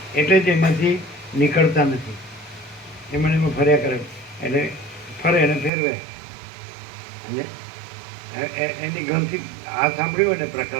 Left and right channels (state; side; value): drops out; left; at 5.7 s